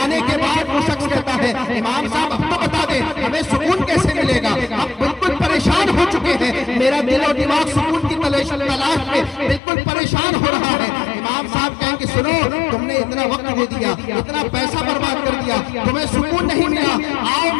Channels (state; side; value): drops out; right; at 9.6 s